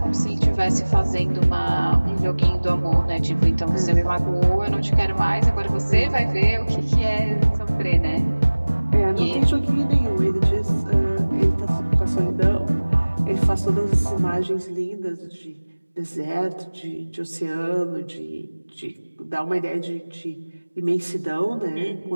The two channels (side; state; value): both; inverted; correlation -1.00